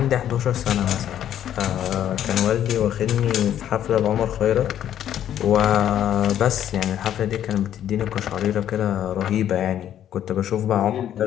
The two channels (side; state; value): right; quieter; 10.7 dB